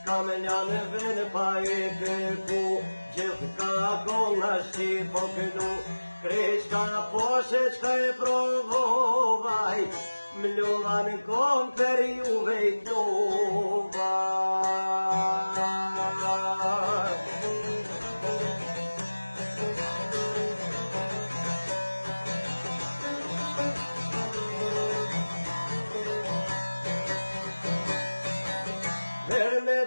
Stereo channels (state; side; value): inverted; both; correlation -1.00